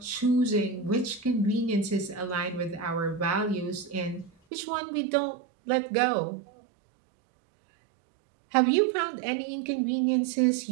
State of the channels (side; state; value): left; drops out; at 4.3 s